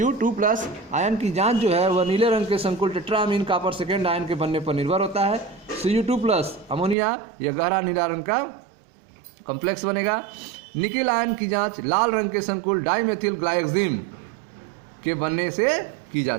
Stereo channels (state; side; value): drops out; left; at 7.0 s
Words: आयन की जांच जो है वह नीले रंग के संकुल टेट्राएमीन कॉपर सेकेंड आयन के बनने पर निर्भर होता है। Cu2+ अमोनिया यह गहरा नीला रंग का कॉम्प्लेक्स बनेगा। निकिल आयन की जांच लाल रंग के संकुल डाइमेथिल ग्लाइक्सिम के बनने से की